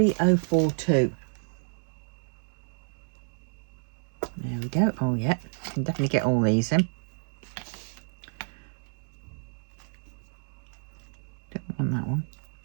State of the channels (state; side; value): silent; left; 58 dB below the other